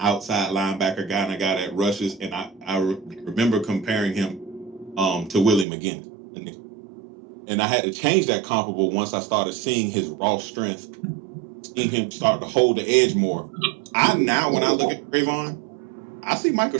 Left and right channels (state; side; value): drops out; left; at 5.7 s